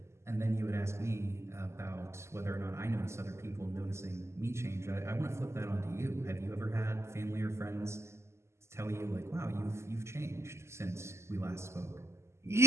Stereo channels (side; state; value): left; late; 0.13 ms